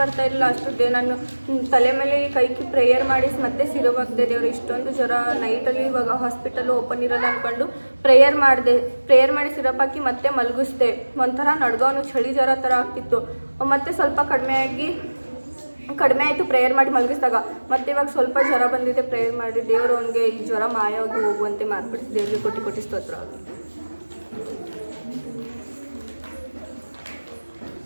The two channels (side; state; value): both; inverted; correlation -1.00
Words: ಅಷ್ಟು ನಾನು ತಲೆ ಮೇಲೆ ಕೈಕಿ ಪ್ರೇಯರ್ ಮಾಡಿ ಮತ್ತೆ ಸಿರಪ್ ಹಾಕಿದೆ. ದೇವರು ಇಷ್ಟೊಂದು ಜ್ವರ ನೈಟಲ್ಲಿ ಇವಾಗ ಹಾಸ್ಪಿಟಲ್ ಓಪನ್ ಇರೋದು ಅಂದ್ಕೊಂಡು ಪ್ರೇಯರ್ ಮಾಡಿ ಸಿರಪ್ ಹಾಕಿ ಮತ್ತೆ ಮಲಗಿಸ್ದೆ. ಒಂಥರ ನಡ್ಗವನು ಚಳಿ ಜ್ವರ ಥರ ಆಗ್ತಿತ್ತು. ಮತ್ತೆ ಸ್ವಲ್ಪ ಕಡಿಮೆ ಆಯಿತು ಪ್ರೇಯರ್ ಮಾಡಿ ಮಲಗಿಸಿದಾಗ. ಮತ್ತೆ ಇವಾಗ ಸ್ವಲ್ಪ ಜ್ವರ ಬಂದಿದೆ. ಪ್ರೇಯರ್ ಮಾಡಿ ದೇವರು ಅವನಿಗೆ ಈ ಜ್ವರ ಮಾಯವಾಗಿ ಹೋಗುವಂತೆ ಮಾಡಿಬಿಟ್ಟು ದೇವರಿಗೆ ಕೋಟಿ ಕೋಟಿ ಸ್ತೋತ್ರ.